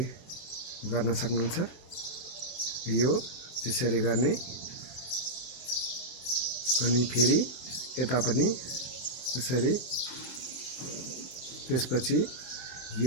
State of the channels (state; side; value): late; right; 23 ms